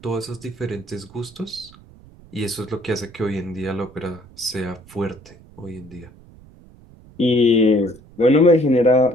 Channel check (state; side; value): noise; right; rumble, 23 dB below the sound